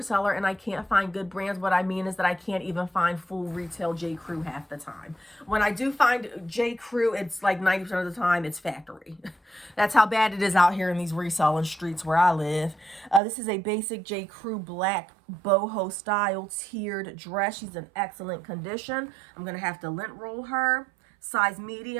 seller and I can't find good brands, what I mean is that I can't even find full retail J. Crew half the time. When I do find J. Crew, it's like 90% of the time it's factory. That's how bad it is out here in these reselling streets where I live. This is a basic J. Crew black boho style tiered dress. She's in excellent condition. I'm going to have to lint roll her. Size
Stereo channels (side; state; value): left; drops out; at 13.2 s